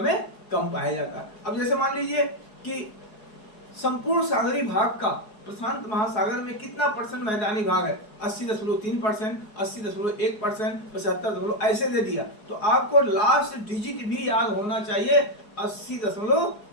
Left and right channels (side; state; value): right; late; 4.7 ms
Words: में कम पाया जाता है। अब जैसे मान लीजिए कि संपूर्ण सागरीय भाग का प्रशांत महासागर में कितना परसेंट मैदानी भाग है, 80.3%, 80.1%, 75 ऐसे दे दिया, तो आपको लास्ट डिजिट भी याद होना चाहिए